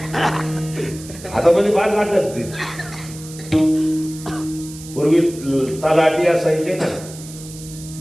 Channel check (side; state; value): right; noise; hiss, 16 dB below the sound